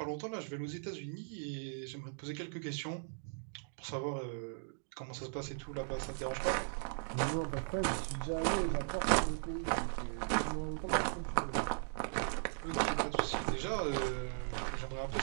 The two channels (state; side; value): silent; left; digital silence